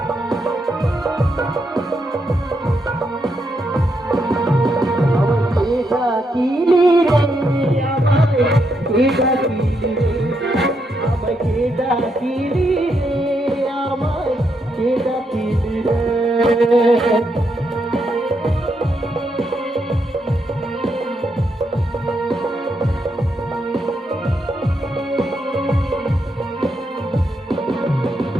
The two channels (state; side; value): normal; both; correlation 0.80